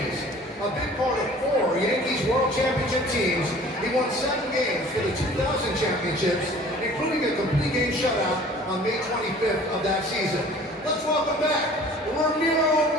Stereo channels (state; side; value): normal; both; correlation 0.48